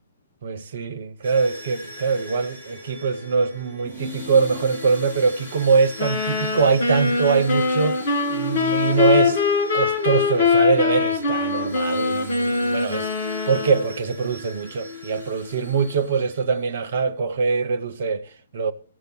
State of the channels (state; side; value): inverted; both; correlation -0.57